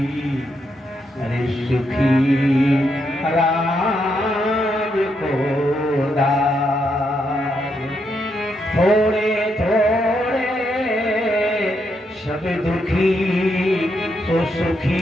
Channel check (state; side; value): normal; both; correlation 0.80